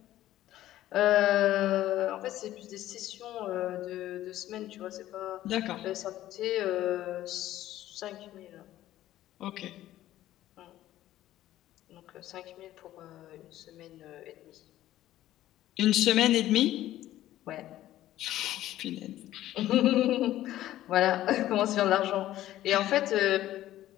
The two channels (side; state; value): right; quieter; 14.0 dB